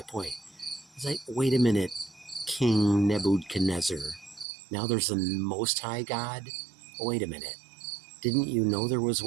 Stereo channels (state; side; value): drops out; left; at 4.5 s